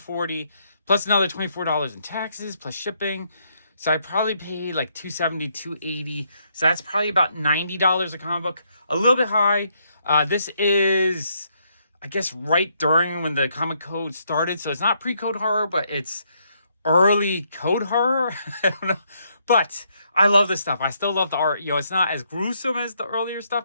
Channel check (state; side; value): inverted; both; correlation -0.74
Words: plus another $24 in taxes, plus shipping. So I probably paid like $270, $280. So that's probably about $90 a comic book. A little bit high. This is, I guess, right during when the comic code started. So it's not pre-code horror, but it's early code horror. I don't know. But I love this stuff. I still love the art. You know, it's not as gruesome as the earlier